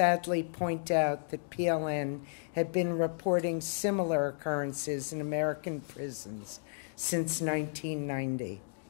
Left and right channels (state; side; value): silent; right; digital silence